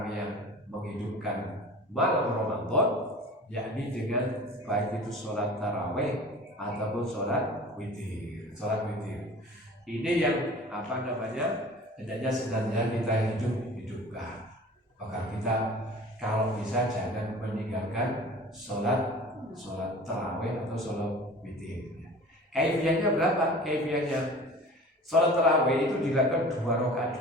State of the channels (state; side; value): normal; both; correlation 0.41